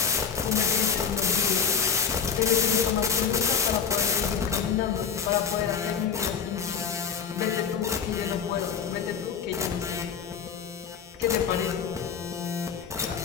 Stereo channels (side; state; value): right; quieter; 6.7 dB